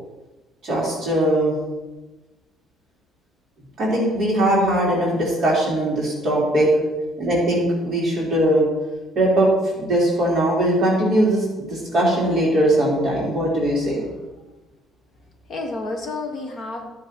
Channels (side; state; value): both; normal; correlation 0.61